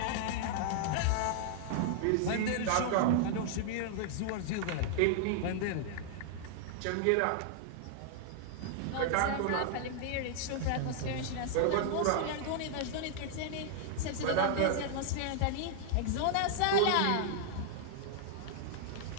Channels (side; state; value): both; different; correlation -0.01